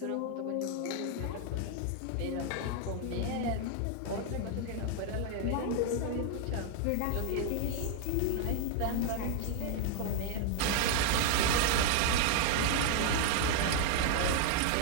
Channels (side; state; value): both; different; correlation 0.00